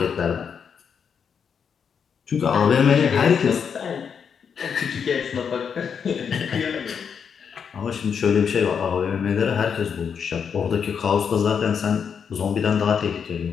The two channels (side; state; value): right; quieter; 6.9 dB